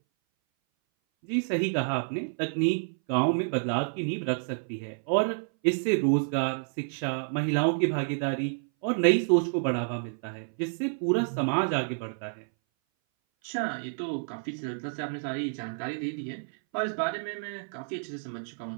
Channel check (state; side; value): silent; left; 58 dB below the other